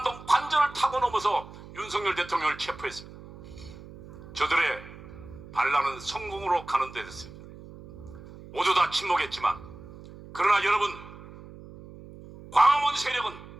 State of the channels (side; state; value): right; noise; hum, 17 dB below the sound